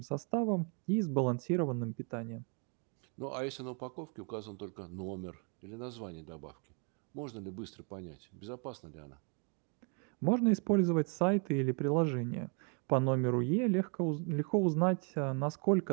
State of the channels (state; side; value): quieter; left; 37.7 dB